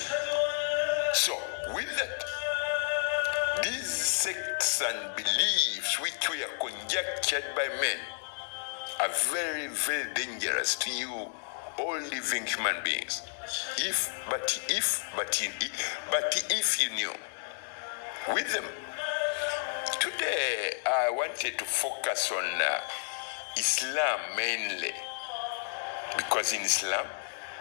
So, with that, these sects and beliefs which were conjectured by men are very, very dangerous to you, all living human beings. But if you knew, with them. Today, I wanted to focus on Islam mainly, because in Islam,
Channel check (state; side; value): silent; right; digital silence